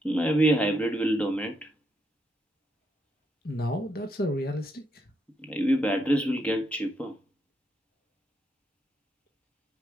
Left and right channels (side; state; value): both; normal; correlation 0.78